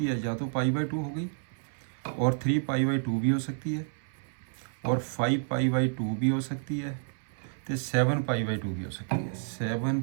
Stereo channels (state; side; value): silent; left; 58 dB below the other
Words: है, या तो पाई बाई 2 हो गई, और 3 पाई बाई 2 भी हो सकती है, और 5 पाई बाई 2 भी हो सकती है, तो 7 पाई बाई 2 भी हो सकती है। 7